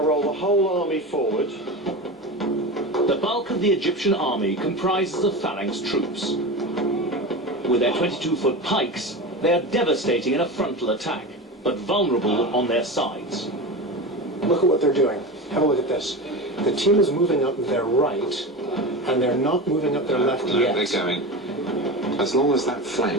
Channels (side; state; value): both; normal; correlation 0.26